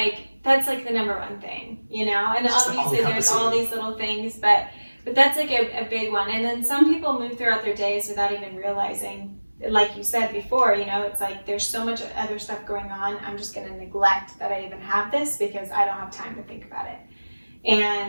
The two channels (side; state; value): both; inverted; correlation -1.00